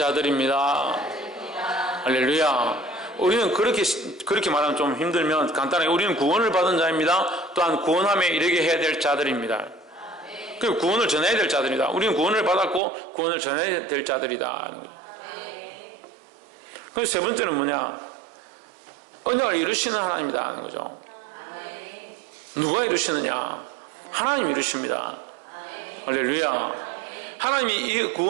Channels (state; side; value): drops out; left; at 12.8 s